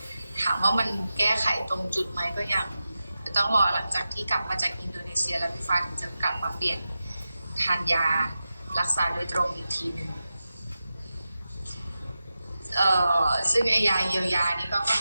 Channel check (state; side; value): inverted; both; correlation -0.92